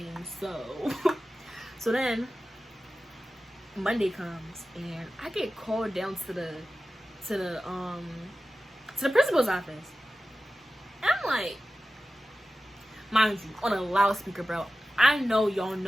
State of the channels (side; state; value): both; normal; correlation 0.94